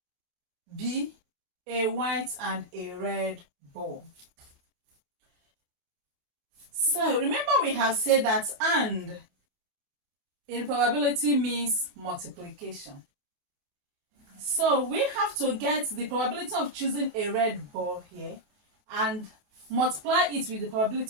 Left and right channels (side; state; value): left; late; 29 ms